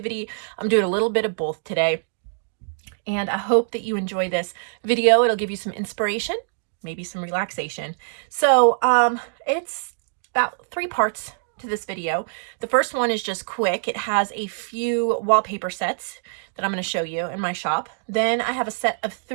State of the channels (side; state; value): left; silent; digital silence